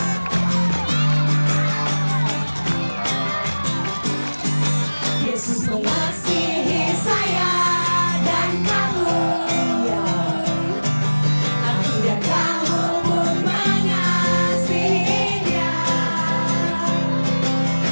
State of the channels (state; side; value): inverted; both; correlation -1.00